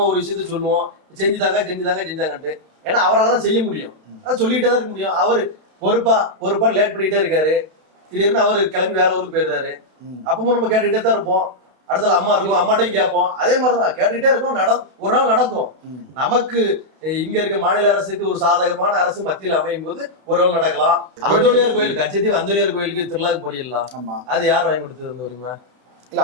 ஒரு விஷயத்த சொல்லுவோம், செஞ்சுதாங்கன்ட்டு. ஏன்னா அவரால் தான் செய்ய முடியும், அதை சொல்லிக்கிட்டே தான் இருக்க முடியும். அவரு பொறுப்பா லேட் பண்ணிட்டே இருக்காரு. திடீர்னு அவரு கிளம்பி வேற ஊருக்கு போயிருந்தாரு. அப்பவும் நம்ம கேட்டுக்கிட்டே தான் இருப்போம். அடுத்த அம்மா இருக்கும், அம்மாட்டையும் கேட்போம். அதே மாதிரிதான் கேட்டுக்கிட்டே இருக்கும். ஒரு நாள் நடக்கும். நமக்கு இங்க இருக்க மாநில அரசுக்கு ஒரு சாதகமான அரசு மத்தியில் அமையும் போது ஒரு நாள் நடக்கலாம். அந்தோனியார் கோயில், கச்சத்தீவு அந்தோனியார் கோயிலுக்கு திருவிழாக்கு போறீங்களா? அது யார் வாங்கி கொடுத்தது வருமா? இல்ல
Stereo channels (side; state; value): left; late; 32 ms